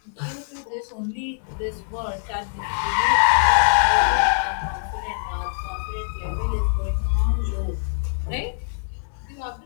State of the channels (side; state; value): right; silent; digital silence